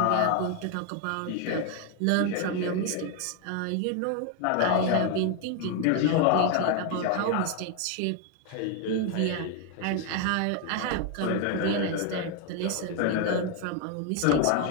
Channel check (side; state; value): both; different; correlation 0.01